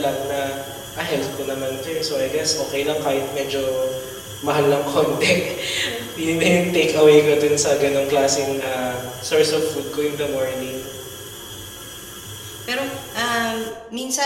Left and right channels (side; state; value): both; identical; correlation 1.00